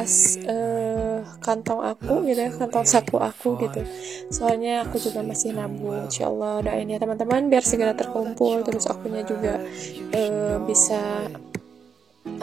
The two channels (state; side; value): quieter; left; 6.6 dB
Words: kantong aku gitu ya, kantong saku aku gitu, soalnya aku juga masih nabung. Insyaallah doain ya teman-teman biar segera terkumpul, terus akunya juga bisa